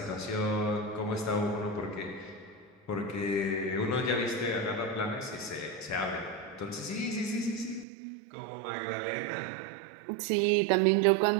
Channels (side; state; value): left; drops out; at 7.9 s